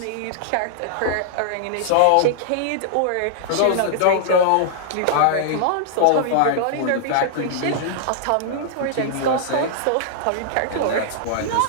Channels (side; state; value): both; different; correlation -0.01